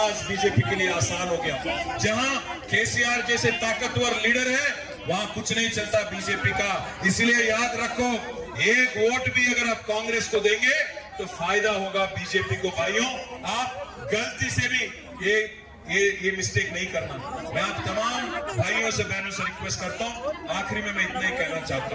बीजेपी के लिए आसान हो गया। जहां केसीआर जैसे ताकतवर लीडर है वहां कुछ नहीं चलता बीजेपी का। इसलिए याद रखो, एक वोट भी अगर आप कांग्रेस को देंगे तो फायदा होगा बीजेपी को। भाइयों, आप गलती से भी ये मिस्टेक नहीं करना। मैं आप तमाम भाइयों से बहनों से रिक्वेस्ट करता हूँ, आखिरी में मैं इतना ही कहना चाहता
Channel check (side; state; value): both; identical; correlation 1.00